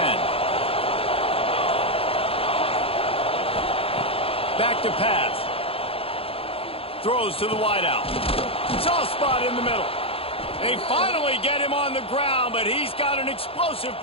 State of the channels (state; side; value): late; right; 0.27 ms